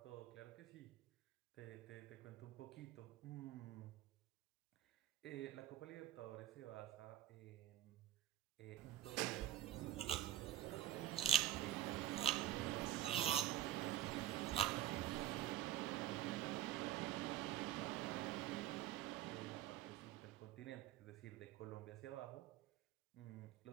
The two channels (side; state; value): left; quieter; 13.3 dB